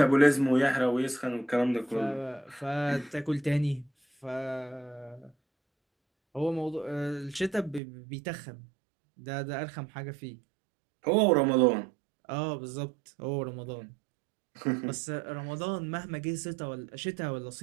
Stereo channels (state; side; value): drops out; left; at 7.8 s